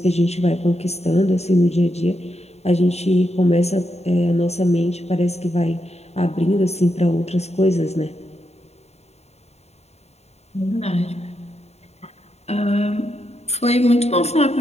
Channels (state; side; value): late; right; 0.31 ms